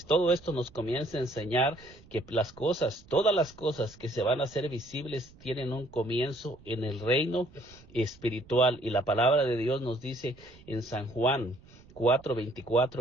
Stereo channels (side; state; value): right; noise; rumble, 24 dB below the sound